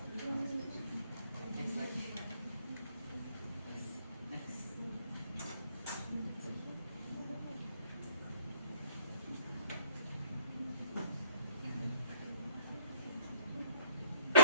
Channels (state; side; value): inverted; both; correlation -0.56